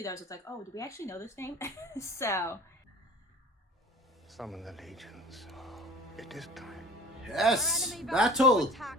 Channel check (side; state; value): both; normal; correlation 0.42